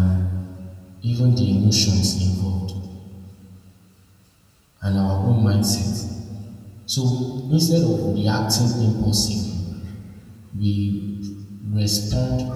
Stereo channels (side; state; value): both; identical; correlation 1.00